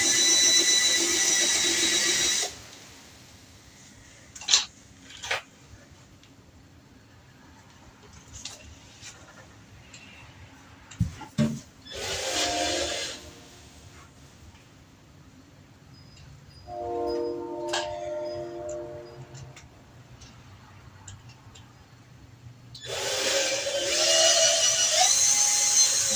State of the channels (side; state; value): both; identical; correlation 1.00